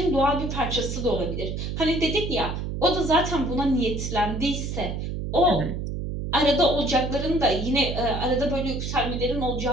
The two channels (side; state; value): right; noise; hum, 4 dB below the sound